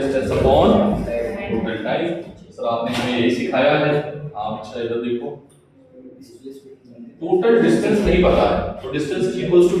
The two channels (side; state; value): both; identical; correlation 1.00